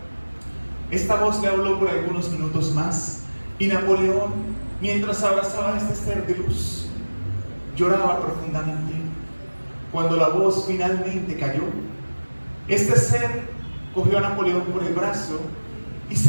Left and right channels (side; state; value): both; inverted; correlation -1.00